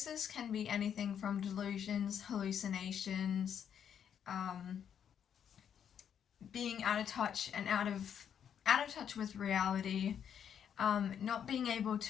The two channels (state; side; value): quieter; right; 8.5 dB